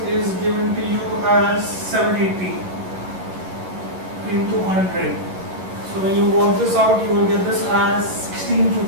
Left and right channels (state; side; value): late; left; 11 ms